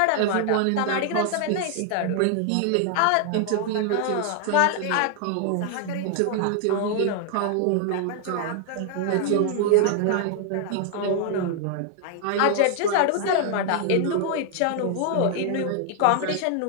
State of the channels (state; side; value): different; both; correlation 0.00